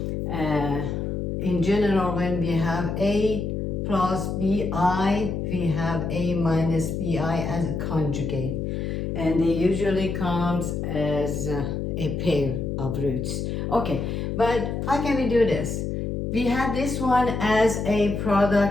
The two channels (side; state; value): left; noise; hum, 2 dB below the sound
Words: Uh, in general, when we have a plus bi, we have a minus bi as a conjugate. And they usually comes as a pair of roots. Okay, but how can we do this? We have this one as a